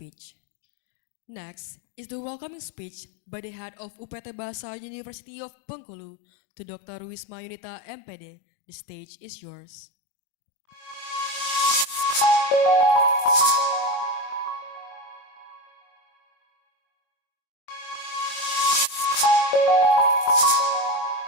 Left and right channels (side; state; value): right; late; 22 ms